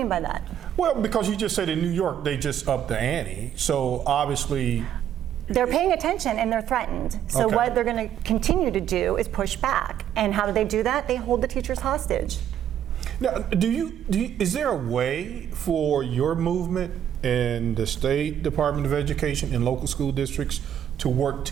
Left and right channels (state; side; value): quieter; left; 10.0 dB